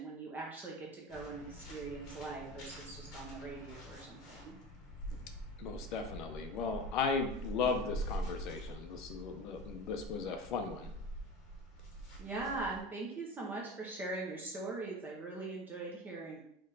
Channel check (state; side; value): normal; both; correlation 0.30